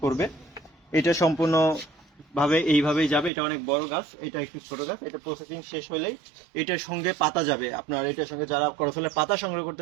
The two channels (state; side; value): drops out; left; at 3.3 s